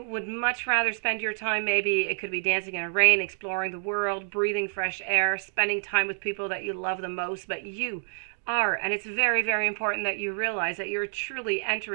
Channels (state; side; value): silent; left; digital silence